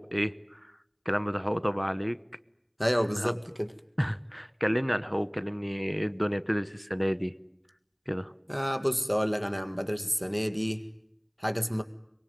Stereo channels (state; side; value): identical; both; correlation 1.00